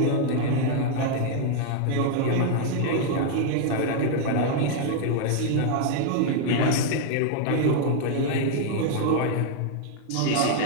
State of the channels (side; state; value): both; different; correlation 0.00